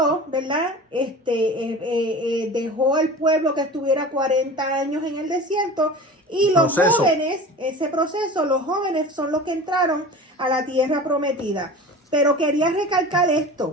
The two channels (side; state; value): both; normal; correlation 0.36